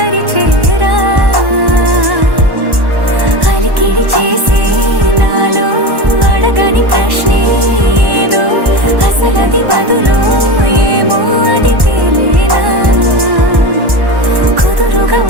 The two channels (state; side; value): late; left; 1.1 ms